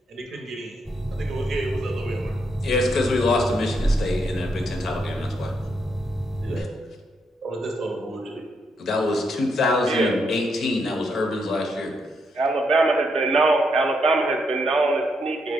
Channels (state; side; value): normal; both; correlation 0.78